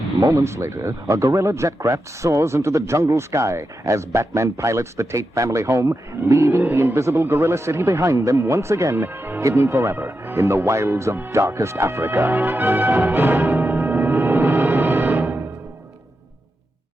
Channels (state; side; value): normal; both; correlation 0.88